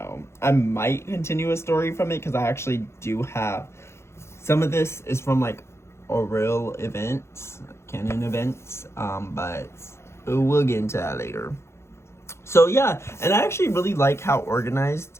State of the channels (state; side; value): late; right; 0.13 ms